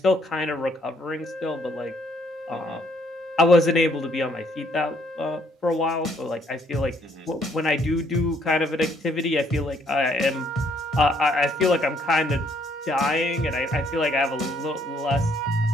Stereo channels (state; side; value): normal; both; correlation 0.67